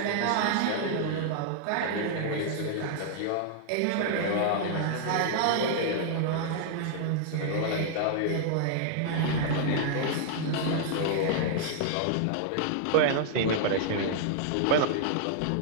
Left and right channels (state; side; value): different; both; correlation -0.01